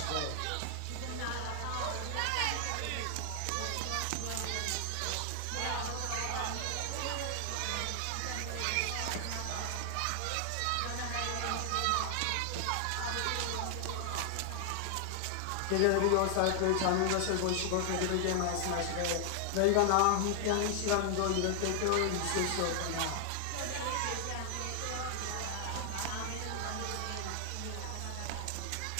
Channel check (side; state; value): both; different; correlation 0.00